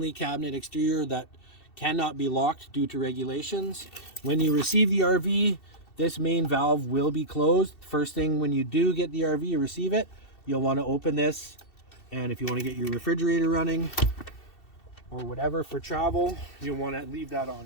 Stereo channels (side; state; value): right; late; 2.7 ms